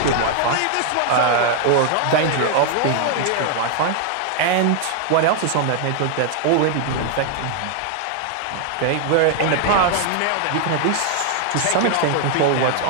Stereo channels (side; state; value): both; different; correlation 0.00